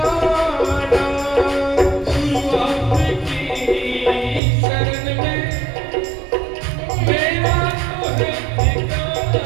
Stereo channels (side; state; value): left; drops out; at 4.4 s